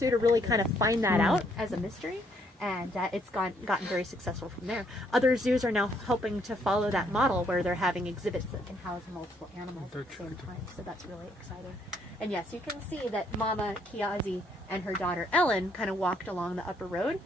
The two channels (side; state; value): both; normal; correlation 0.69